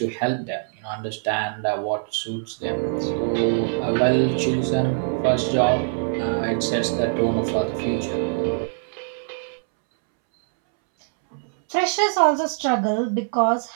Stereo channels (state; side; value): silent; left; 63 dB below the other